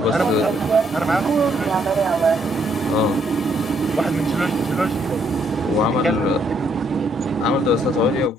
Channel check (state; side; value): normal; both; correlation 0.71